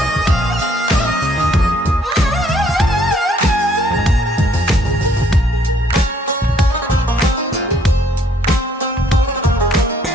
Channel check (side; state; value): both; normal; correlation 0.64